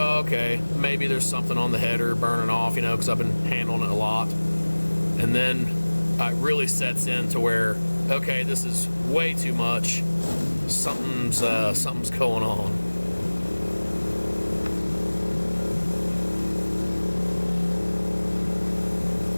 okay, maybe there's something on the header burning off, you know, because I've been handling it a lot. And then it really sets in to where, okay, this is way too much. Something's going on.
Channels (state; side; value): inverted; both; correlation -1.00